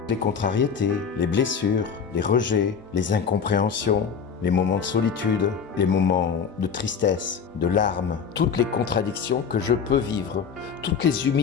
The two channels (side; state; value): right; quieter; 6.5 dB